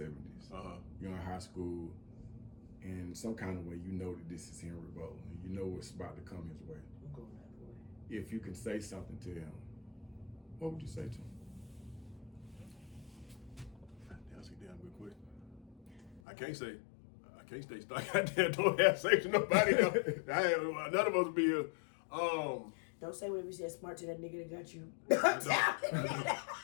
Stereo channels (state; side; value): drops out; right; at 16.2 s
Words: You're in high school. In some kind of way, you know that this is Henry Butler. You know what's about to come his way. I'm going that way. If you can say something to him, what would you say to him? That's a damn good question. I can't stay stuck out there. Don't have sex with nobody else. None of us be here. Don't say whatever you said smart to that nigga that got you.